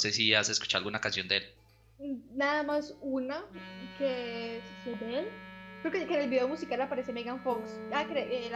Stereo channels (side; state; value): both; identical; correlation 1.00